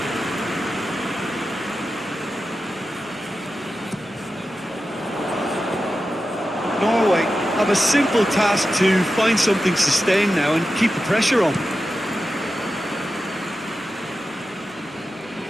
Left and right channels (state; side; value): normal; both; correlation 0.92